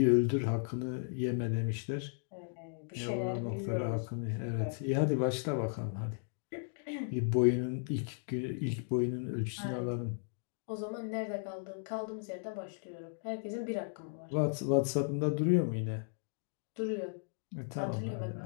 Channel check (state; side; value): silent; right; digital silence